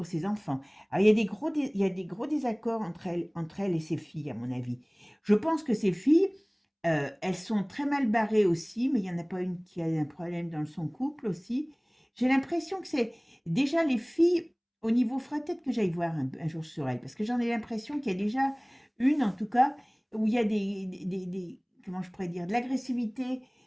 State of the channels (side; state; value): both; identical; correlation 1.00